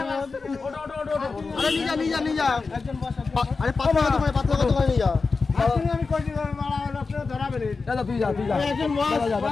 আরে নিয়ে যা, আরে 5 টাকা দোকানে, 5 টাকা দোকানে নিয়ে যা। আমি কই দিলাম মারা হলো, আপনি ধরাবেন দাদা, তুই যা একজন বস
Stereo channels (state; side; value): quieter; right; 4.4 dB